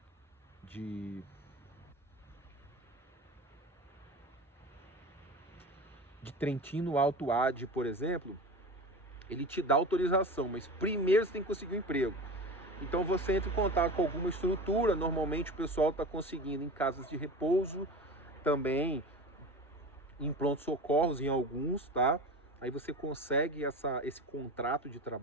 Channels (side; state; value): both; normal; correlation 0.31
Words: Trentino Alto Adige, por exemplo, ele te dá autorização, mas primeiro você tem que conseguir um emprego. Então você entra em contato com alguma estrutura, normalmente o pessoal está conseguindo em casas de repouso, também em pronto-socorros, em alguns, tá? Aí você consegue esse contrato de